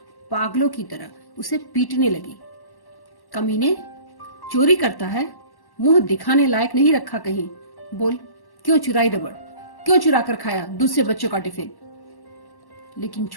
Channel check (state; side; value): late; right; 1.1 ms